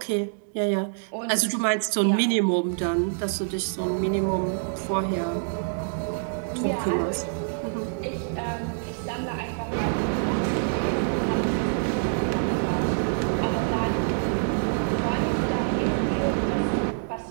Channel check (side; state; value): left; silent; digital silence